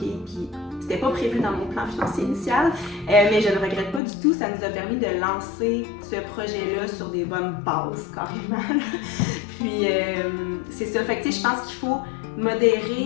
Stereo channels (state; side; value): drops out; right; at 4.0 s